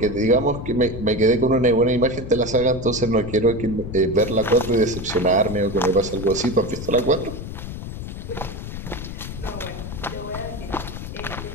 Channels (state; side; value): noise; left; rumble, 8 dB below the sound